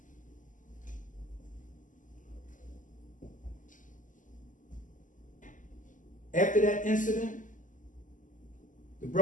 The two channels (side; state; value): right; late; 0.37 ms